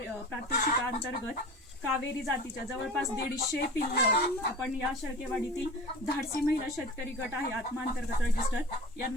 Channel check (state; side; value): normal; both; correlation 0.35